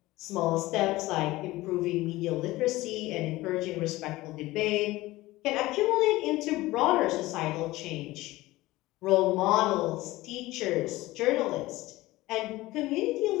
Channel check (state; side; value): quieter; right; 18.5 dB